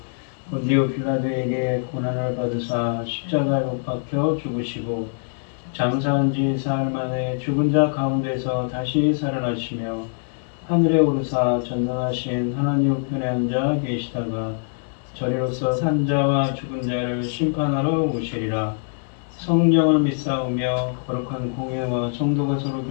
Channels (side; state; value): right; silent; digital silence